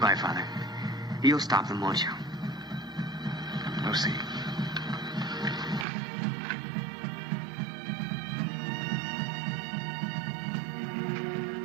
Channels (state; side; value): drops out; left; at 5.9 s